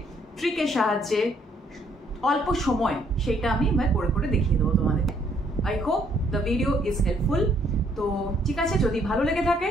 ট্রিকের সাহায্যে, অল্প সময়, সেটা আমি করে করে দেখিয়ে দেবো তোমাদের। I hope the video is helpful. তো ঠিক আছে, যদি ভালো লেগে থাকে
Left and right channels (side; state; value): both; normal; correlation 0.67